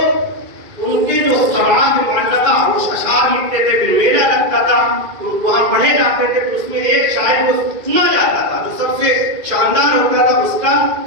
ان کے جو سماعت معلقہ وہ اشعار لکھتے تھے، پھر میلہ لگتا تھا، وہاں پڑھے جاتے تھے، تو اس میں ایک شاعر کو چنا جاتا تھا جو سب سے شاندار ہوتا تھا، اس کا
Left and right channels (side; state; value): left; late; 2.5 ms